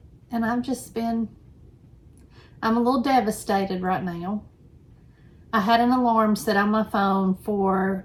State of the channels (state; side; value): identical; both; correlation 1.00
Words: And I'm a little devastated right now. I had an alarm set on my phone for